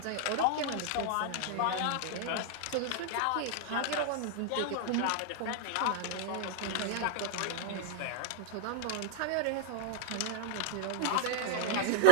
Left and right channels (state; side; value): different; both; correlation 0.00